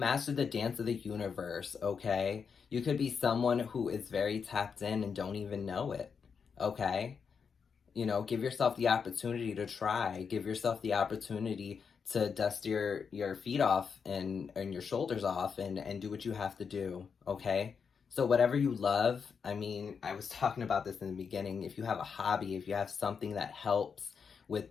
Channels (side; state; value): right; quieter; 6.1 dB